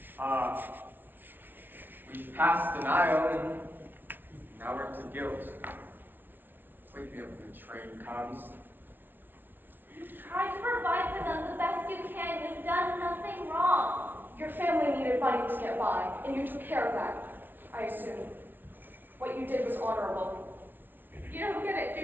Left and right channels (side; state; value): left; late; 0.094 ms